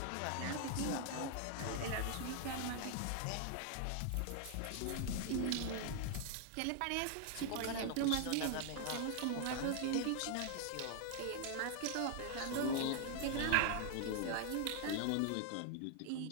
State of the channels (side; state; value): both; different; correlation 0.00